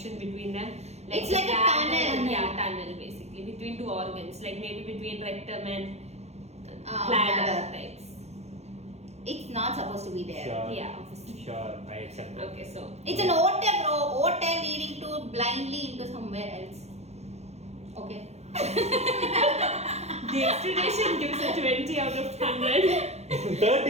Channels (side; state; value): left; late; 0.31 ms